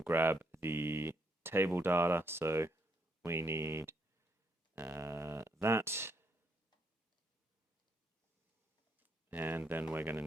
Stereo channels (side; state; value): both; normal; correlation 0.75